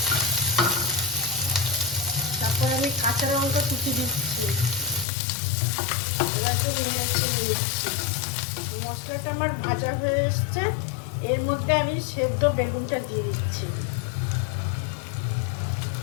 তারপর আমি কাঁচা লঙ্কা কুচি দিচ্ছি, এটাকে নেড়ে চেড়ে দিচ্ছি। মশলাটা আমার ভাজা হয়ে এসছে। এর মধ্যে আমি সেদ্ধ বেগুনটা দিয়ে দিচ্ছি।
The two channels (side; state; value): right; drops out; at 5.1 s